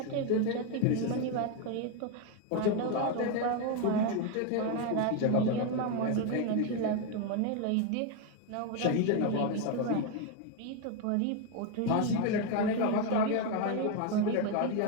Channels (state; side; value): different; both; correlation 0.02